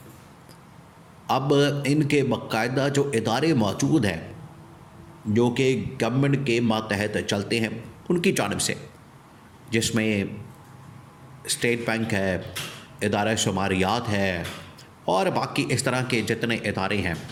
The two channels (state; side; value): identical; both; correlation 1.00